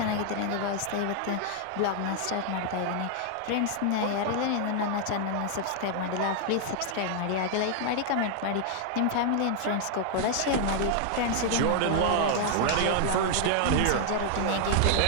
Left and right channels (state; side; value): different; both; correlation 0.00